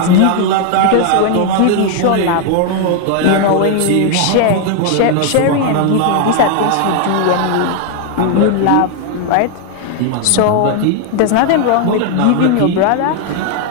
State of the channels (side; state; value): both; different; correlation 0.00